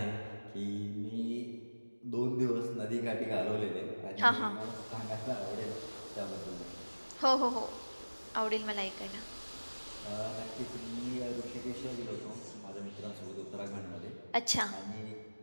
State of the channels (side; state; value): both; inverted; correlation -1.00